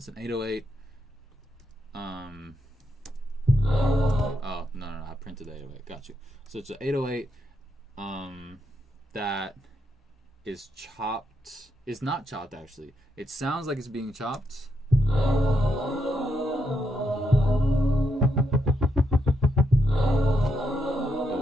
an 808. Oh no, I printed the 808. Got you. So it's an 808 that is chopped. It's not chopped actually. It sounds like it's being chopped.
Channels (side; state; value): both; normal; correlation 0.80